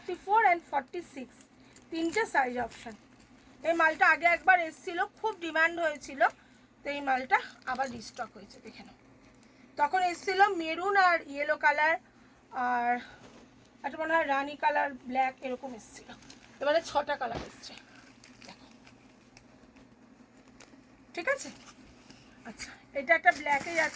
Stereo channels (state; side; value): identical; both; correlation 1.00